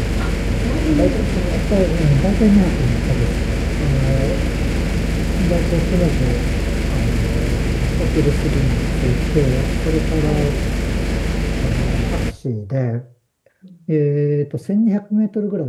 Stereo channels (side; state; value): both; identical; correlation 1.00